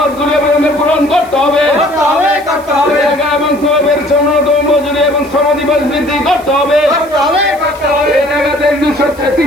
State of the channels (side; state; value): right; noise; hiss, 23 dB below the sound